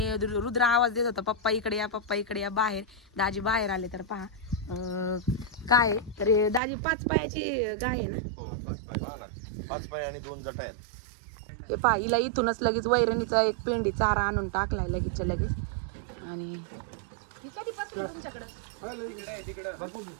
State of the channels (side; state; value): left; drops out; at 6.6 s